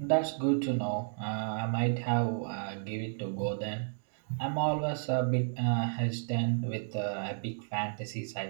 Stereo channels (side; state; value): left; silent; digital silence